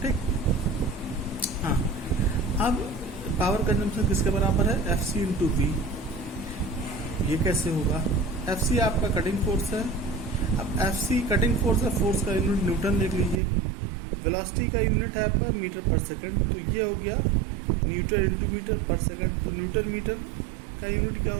ठीक, हाँ। अब पावर कंजम्पशन किसके बराबर है, FC इंटू V। ये कैसे होगा, FC आपका कटिंग फोर्स है। अब FC कटिंग फोर्स है, फोर्स का यूनिट न्यूटन देख लीजिए, वेलोसिटी का यूनिट है आपका मीटर पर सेकंड, तो ये हो गया न्यूटन इंटू मीटर पर सेकंड। तो न्यूटन मीटर का यूनिट क्या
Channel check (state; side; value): drops out; left; at 13.4 s